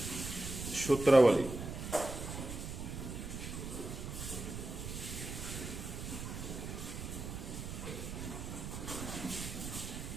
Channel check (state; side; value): noise; right; rumble, 6 dB below the sound